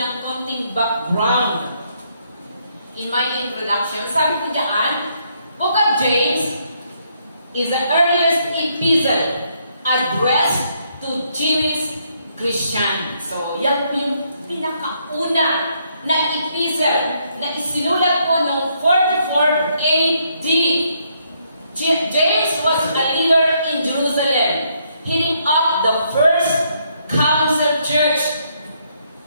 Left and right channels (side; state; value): both; inverted; correlation -0.73